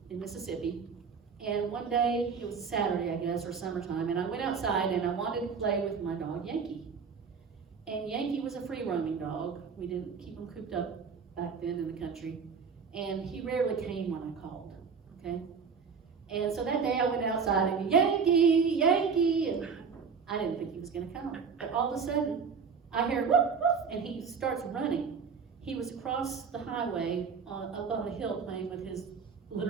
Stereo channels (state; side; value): quieter; left; 5.8 dB